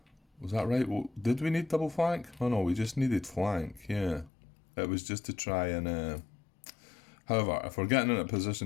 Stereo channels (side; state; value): right; drops out; at 4.3 s